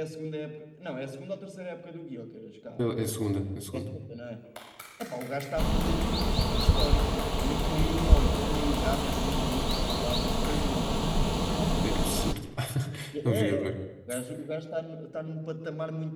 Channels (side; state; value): both; identical; correlation 1.00